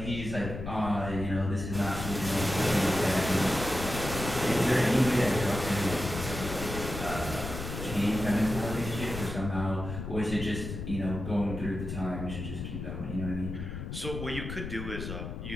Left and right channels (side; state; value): left; noise; rumble, 6 dB below the sound